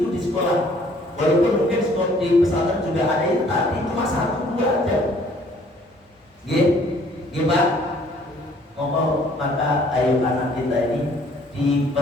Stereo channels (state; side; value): normal; both; correlation 0.59